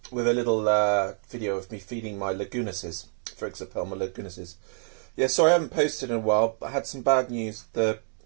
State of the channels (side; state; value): left; silent; 60 dB below the other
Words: with a little video of me feeding my Lagunases, for example, my Lagunases. Yeah, sorry I haven't posted in a while, but I had some bad news. The